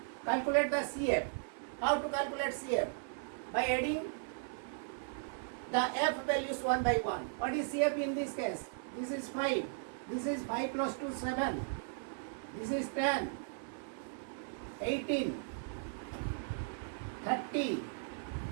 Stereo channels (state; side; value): silent; left; 53 dB below the other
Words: calculate the CF. How to calculate CF? By adding the F values one by one. What is CF in this case? This is 5. This is 5 plus 2, 7. This is 10, 18, 30,